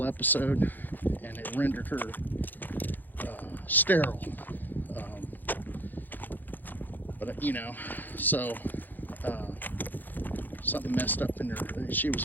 episode, and it rendered her sterile. But so something messed up in her. She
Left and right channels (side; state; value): right; late; 0.087 ms